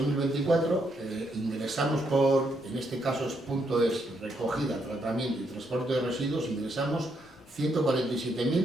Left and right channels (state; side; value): normal; both; correlation 0.76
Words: ingresamos en este caso punto es recogida, tratamiento y transporte de residuos, ingresamos